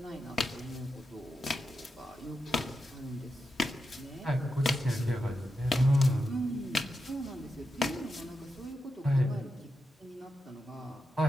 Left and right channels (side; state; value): both; normal; correlation 0.88